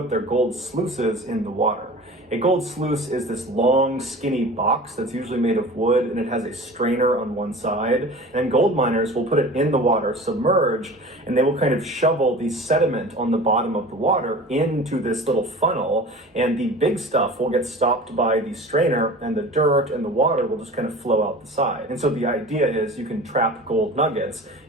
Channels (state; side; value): normal; both; correlation 0.38